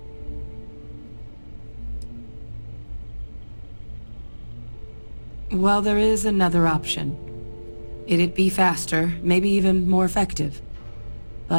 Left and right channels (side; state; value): both; inverted; correlation -1.00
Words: Well, there is another option. It'd be faster, maybe even more effective.